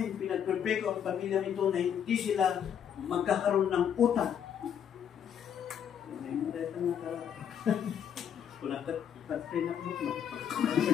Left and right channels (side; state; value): right; quieter; 8.6 dB